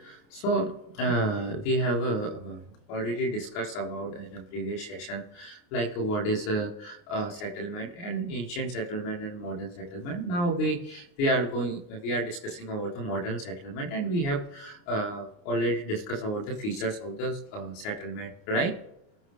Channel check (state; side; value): late; right; 29 ms